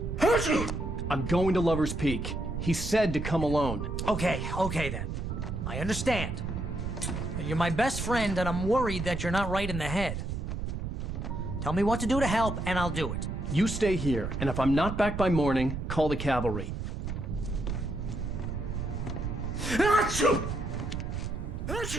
I'm going to Lover's Peak. He said to come alone. Okay then. I understand. You're my best friend, and I'm worried that you're not right in the head. Tell me what to do to help, and I'll do it. You stay here, and if I'm not back by morning, call the cavalry. Achoo!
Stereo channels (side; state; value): right; noise; rumble, 4 dB below the sound